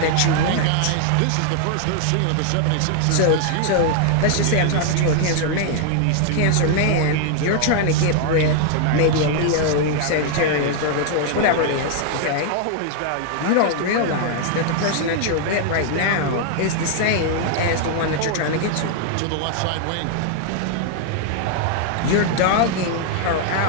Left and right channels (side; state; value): both; different; correlation 0.00